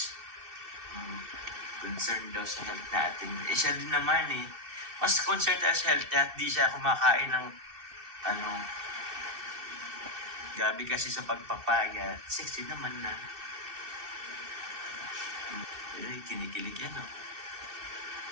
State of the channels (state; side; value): late; left; 2.6 ms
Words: Concerned daw sa health natin. Eh, siya din naman eh. Mas concerned tayo sa health at di siya kumakain ng gabi kasi sa pagpapayat. Sexy naman na. Ay, kinikilig yan oh.